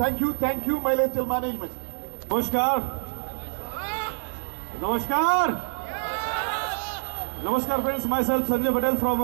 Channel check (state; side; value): silent; left; digital silence